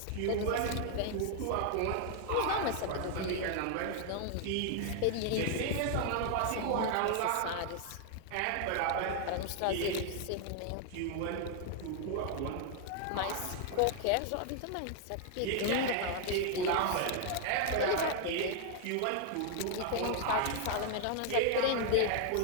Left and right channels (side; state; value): both; different; correlation 0.00